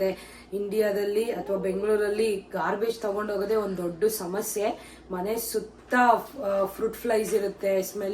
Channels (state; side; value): identical; both; correlation 1.00